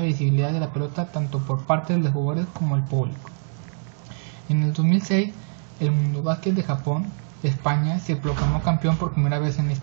de la pelota tanto por parte de los jugadores como el público. En el 2006, el Mundobásquet de Japón, España, se proclamó campeón por primera vez en la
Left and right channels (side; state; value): left; silent; digital silence